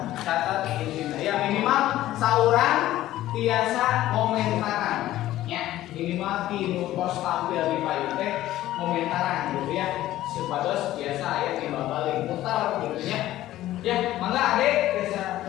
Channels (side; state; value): right; quieter; 14.5 dB